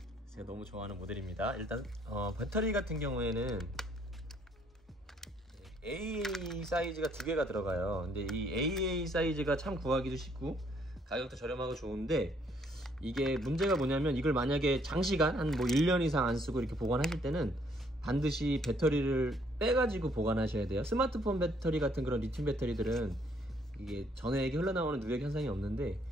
제가 너무 좋아하는 모델입니다. 일단 배터리 같은 경우에는 AA 사이즈가 두 개가 들어가요. 근데 이 AA 사이즈가 참 구하기도 쉽고 가격도 저렴하고 좋은데, 이게 문제가 뭐냐면 이걸 만약에 장시간 한 뭐 1년 이상 안 쓰고 이렇게 보관하실 때는 반드시 배터리를 빼가지고 보관하셔야 돼요. 스마트폰 배터리 같은 그런 리튬 배터리들은 이게 전해액이 흘러나오는 누액 현상이 없는데,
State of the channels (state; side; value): normal; both; correlation 0.66